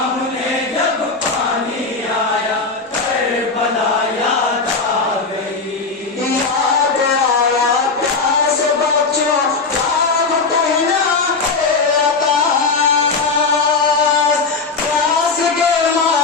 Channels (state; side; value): quieter; right; 4.3 dB